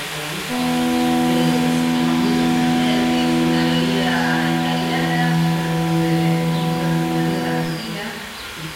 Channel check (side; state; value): both; identical; correlation 1.00